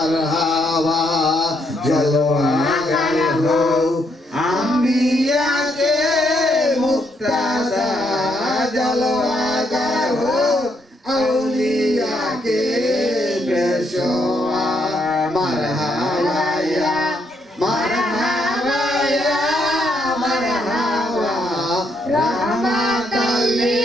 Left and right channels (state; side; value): normal; both; correlation 0.74